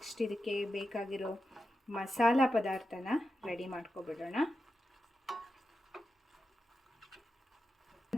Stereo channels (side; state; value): both; normal; correlation 0.89